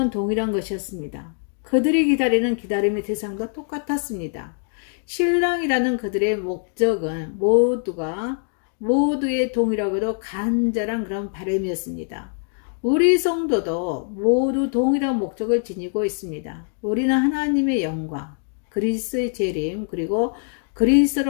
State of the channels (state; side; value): silent; right; 55 dB below the other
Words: 동일한 것이었습니다. 그들이 기다리는 기다림의 대상도 똑같았습니다. 신랑이라는 그들의 목적은 모두의 동일하고도 간절한 그런 바람이었습니다. 우리 성도도 모두 동일한 목적을 지니고 있습니다. 우리는 하나님의 영광, 그리스도의 재림, 그리고